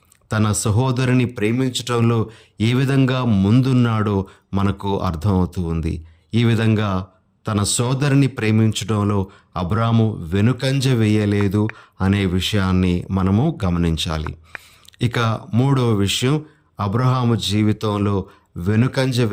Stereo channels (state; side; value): identical; both; correlation 1.00